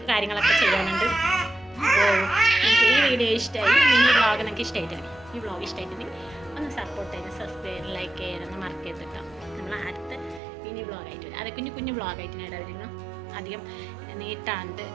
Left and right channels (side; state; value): left; drops out; at 10.4 s